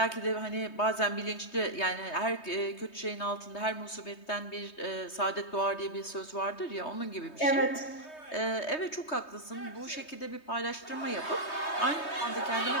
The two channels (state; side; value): late; right; 3.2 ms